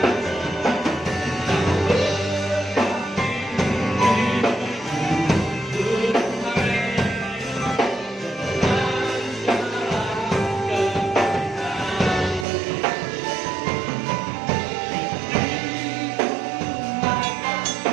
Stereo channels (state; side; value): drops out; left; at 12.5 s